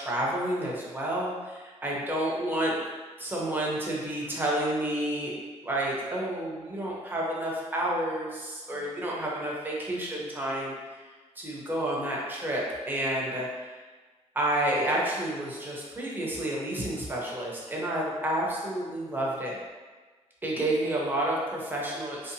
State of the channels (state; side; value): normal; both; correlation 0.50